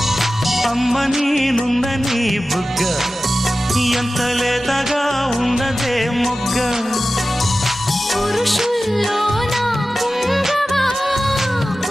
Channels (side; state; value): both; normal; correlation 0.95